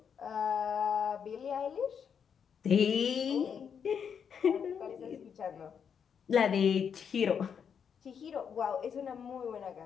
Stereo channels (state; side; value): quieter; right; 7.3 dB